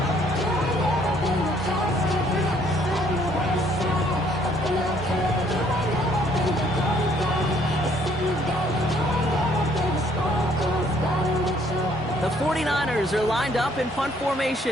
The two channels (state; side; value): normal; both; correlation 0.64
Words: The 49ers are lined up in punt